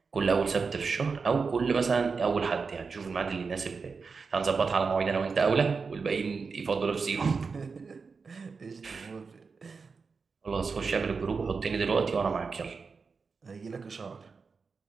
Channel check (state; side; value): quieter; left; 4.9 dB